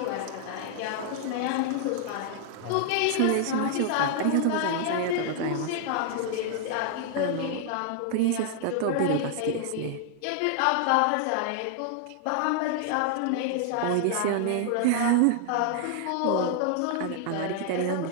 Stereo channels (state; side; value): different; both; correlation 0.00